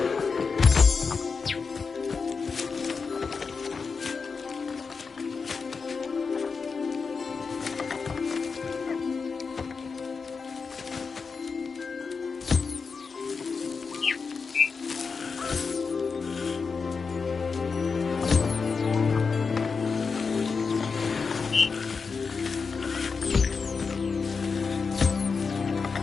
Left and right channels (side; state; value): right; quieter; 5.1 dB